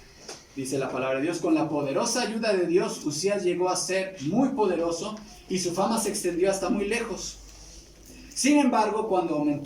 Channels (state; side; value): identical; both; correlation 1.00